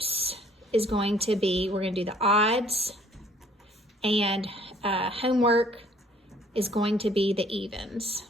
is going to be, we're going to do the odds, and homework is going to be the evens.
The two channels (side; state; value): both; normal; correlation 0.59